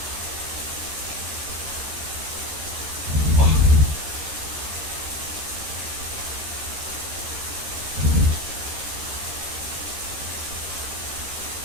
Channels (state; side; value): late; left; 12 ms